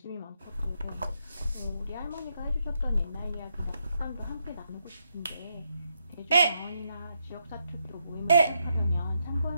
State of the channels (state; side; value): inverted; both; correlation -0.80